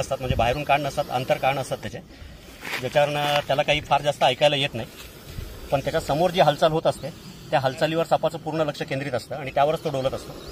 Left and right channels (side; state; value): both; identical; correlation 1.00